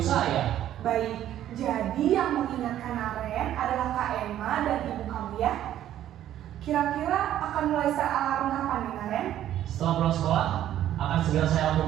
Baik, jadi yang mengingatkan Naren adalah Kak Emma dan ibu kamu ya? Kira-kira akan mulai set alarm kapan nih Naren? Setelah pulang sekolah, akan segera saya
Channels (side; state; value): left; quieter; 11.9 dB